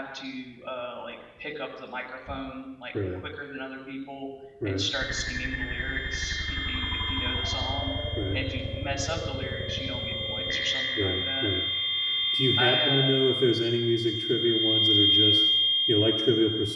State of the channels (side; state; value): both; identical; correlation 1.00